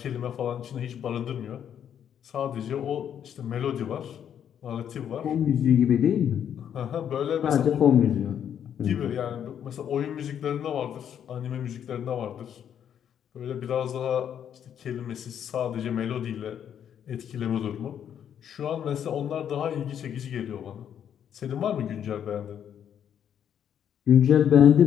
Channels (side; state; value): right; quieter; 9.1 dB